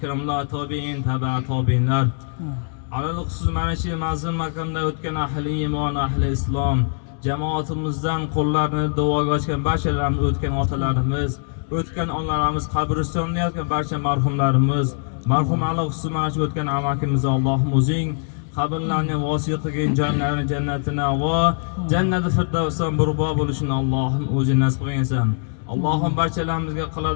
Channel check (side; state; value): right; silent; digital silence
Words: tobiin, tabi'a tobiinlar, alal xusus mana shu mazlum makonda o'tgan ahli iymon, ahli islom jamoatimizdan qo'llarini duoga ochgan barchalarimiz, o'tgan otalarimiz, o'tgan onalarimiz, qabristonda yotgan barcha marhumlarimiz, marhum alal xusus mana shu o'tgan amakimiz Allohim o'zing qabrlarni vosiy qilgan jonlarni jannatini va jannati firdavsdan burbo bo'lishini Allohim o'zing nasib qilgansan. Allohim barchalarimizga